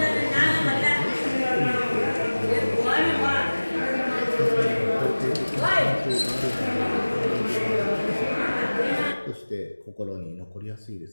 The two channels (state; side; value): inverted; both; correlation -1.00